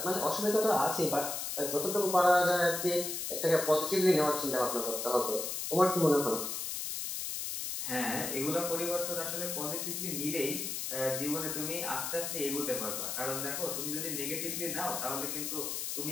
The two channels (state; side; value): noise; left; hiss, 3 dB below the sound